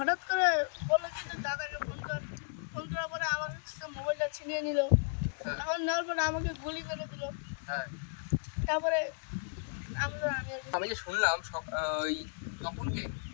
করে বললো কি তোর দাদাকে ফোন কর ফোন করার পরে আমার কাছে মোবাইলটা ছিনিয়ে নিল এখন নেওয়ার পরে আমাকে গুলি করে দিল হ্যাঁ তারপরে আমি আমি যে শুনলাম ওই তপনকে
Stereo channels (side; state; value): right; silent; digital silence